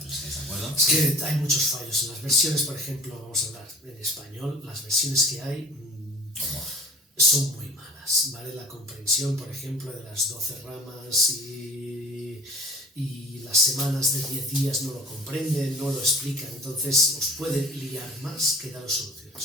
estáis de acuerdo. Es que hay muchos fallos en las versiones, por ejemplo, vamos a hablar en español, las versiones que hay son muy malas, ¿vale? La comprensión, por ejemplo, de las 12 ramas y las semanas de 10 días no lo comprenden, no lo explican, entonces os puede liar más que daros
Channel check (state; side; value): normal; both; correlation 0.43